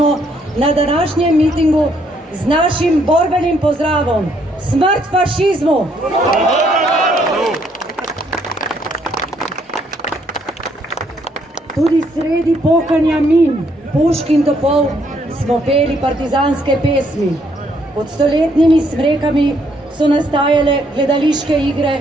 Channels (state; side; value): normal; both; correlation 0.70